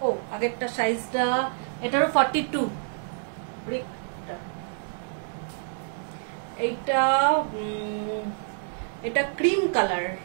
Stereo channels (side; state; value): left; silent; digital silence